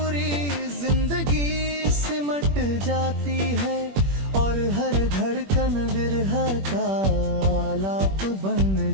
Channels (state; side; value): late; left; 21 ms